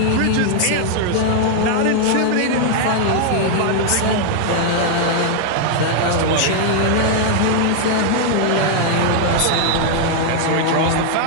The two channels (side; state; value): both; different; correlation 0.00